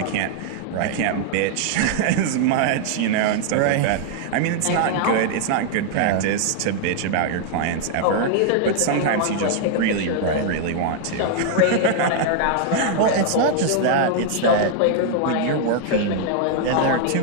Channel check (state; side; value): different; both; correlation -0.01